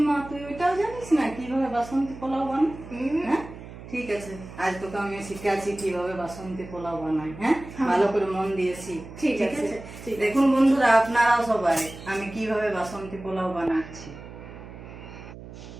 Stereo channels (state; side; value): noise; right; hum, 14 dB below the sound